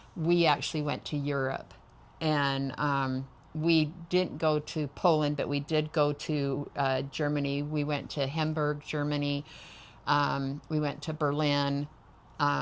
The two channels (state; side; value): identical; both; correlation 1.00